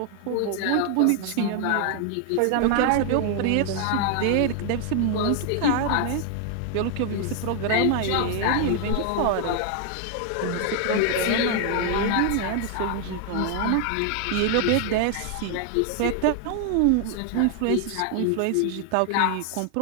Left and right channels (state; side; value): different; both; correlation 0.00